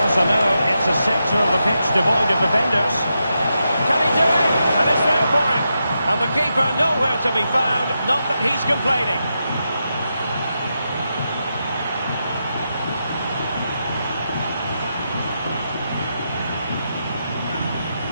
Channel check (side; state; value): both; inverted; correlation -0.86